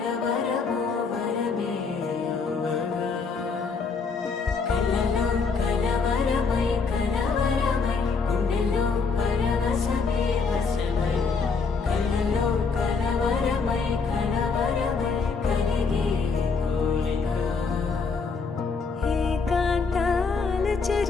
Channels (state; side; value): quieter; right; 4.9 dB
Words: వరమే యువగా కలలో కలవరమై కలవరమై గుండెలో పరవశమే వశమై కలలో కలవరమై కలవరమై కలిగే కోరిక ఏకాంతాల